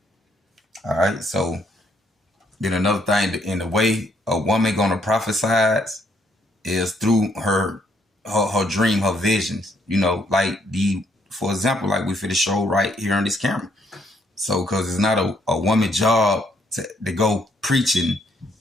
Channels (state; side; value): normal; both; correlation 0.70